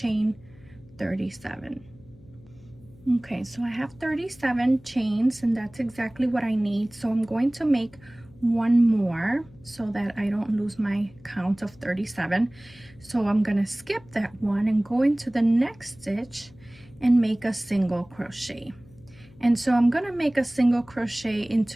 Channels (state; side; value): noise; left; hum, 24 dB below the sound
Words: 37. Okay, so I have 37 chains, and that's exactly what I need. So I'm going to make 1 more so that I don't lose my count of 37. So I'm gonna skip that one and go into the next stitch and make a single crochet. And so I'm gonna make a single crochet